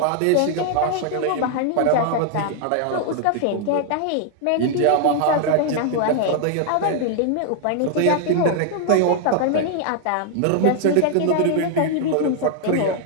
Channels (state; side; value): different; both; correlation 0.00